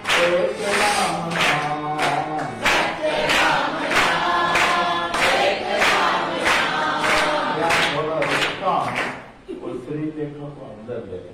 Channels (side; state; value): both; identical; correlation 1.00